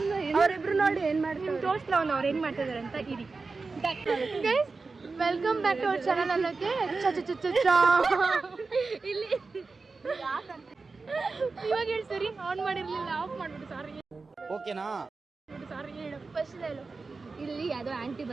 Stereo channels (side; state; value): left; quieter; 4.1 dB